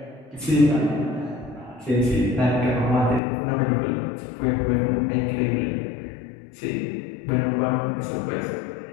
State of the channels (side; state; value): right; drops out; at 3.2 s